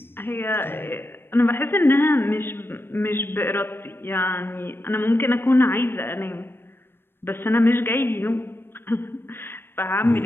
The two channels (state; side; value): late; right; 0.10 ms